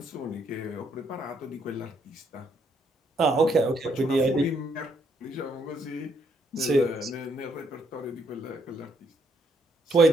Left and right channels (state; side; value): normal; both; correlation 0.72